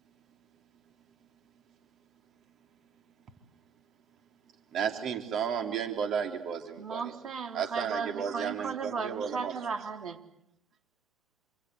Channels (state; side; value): quieter; left; 6.5 dB